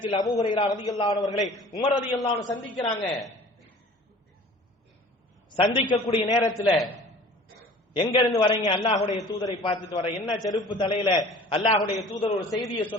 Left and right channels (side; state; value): both; normal; correlation 0.45